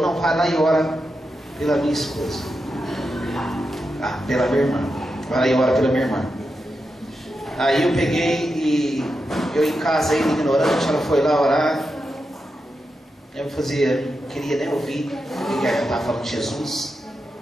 não, vai lá e ora pela minha esposa. Pela minha irmã. Vai lá e ora pela minha irmã. Aí eu peguei e eu em casa ainda ignorante, ela foi lá orar. Eu não queria nem ouvir o que ela estava falando de Jesus.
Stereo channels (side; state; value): both; normal; correlation 0.88